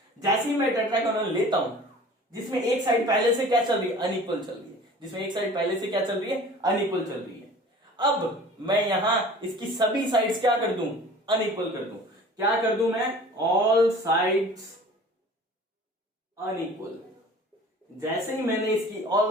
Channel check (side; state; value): both; normal; correlation 0.45